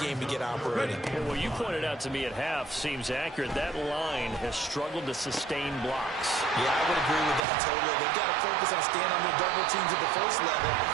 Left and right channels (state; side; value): drops out; left; at 7.4 s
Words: to get operating. And what you pointed out to me at half seems accurate. That line has struggled to sustain blocks. Yeah, I would agree with that totally. They've got to focus on staying on their double teams at the 1st level,